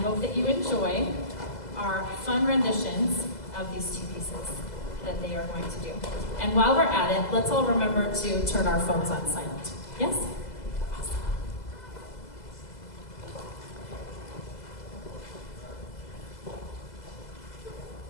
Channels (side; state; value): right; late; 2.0 ms